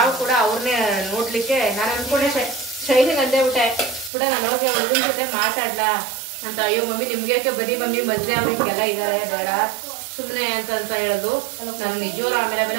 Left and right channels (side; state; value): left; drops out; at 4.1 s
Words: ಕೂಡ ಅವ್ರನ್ನೇ ನೋಡ್ಲಿಕ್ಕೆ ನಾನು ಅನ್ಕೊಂಡೆ ಶೈಲಿಗೆ ಅಂದೇ ಬಿಟ್ಟೆ ನಾನು ಹೋಗಿ ಹುಡುಗನ ಜೊತೆ ಮಾತಾಡ್ಲಾ ಅಂತ. ಅಯ್ಯೋ ಮಮ್ಮಿ ನಿಮ್ಗೆ ಬನ್ನಿ ಮಮ್ಮಿ ಮದ್ವೆ ಅವ್ರಿಗೆಲ್ಲ ಇದಾರೆ ಬೇಡ ಸುಮ್ಮನೆ ಅಂತ ಹೇಳೋದು. ನಾನು ನಿಜವಾರ